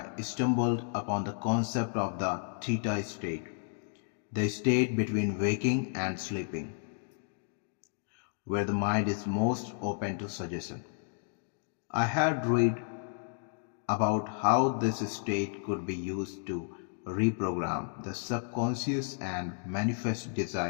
stumbled upon the concept of the Theta State, the state between waking and sleeping, where the mind is most open to suggestion. I had read about how this state could be used to reprogram the subconscious and manifest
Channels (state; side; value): silent; right; digital silence